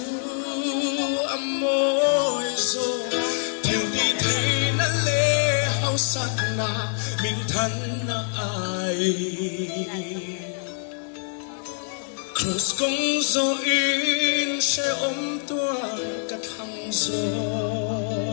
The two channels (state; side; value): silent; right; 62 dB below the other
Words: amoi zo theo đi thế na le hao sát na mình thân na ai cross công zo in sẽ ôm tuar cả thăng zo